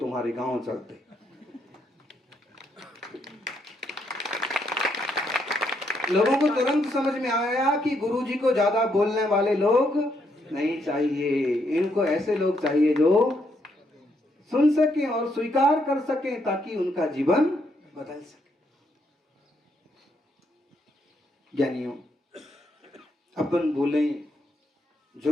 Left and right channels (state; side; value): normal; both; correlation 0.76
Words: गांव चलते। लोगों को तुरंत समझ में आया कि गुरुजी को ज्यादा बोलने वाले लोग नहीं चाहिए, इनको ऐसे लोग चाहिए जो सुन सके और स्वीकार कर सके ताकि उनका जीवन बदल सके। ज्ञानियों, अपन बोलें,